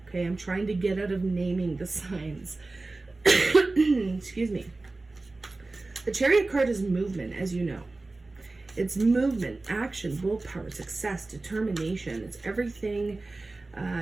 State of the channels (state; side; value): quieter; left; 3.3 dB